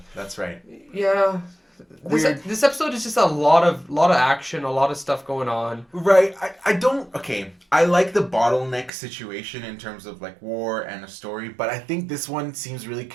That's right. Yeah. This episode is just a lot of action, a lot of stuff going on. Right. I like the bottleneck situation in terms of like war and a story, but I think this one seems really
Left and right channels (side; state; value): left; drops out; at 8.9 s